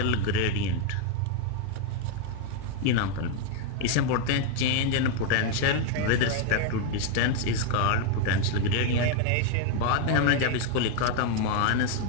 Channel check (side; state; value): both; different; correlation 0.01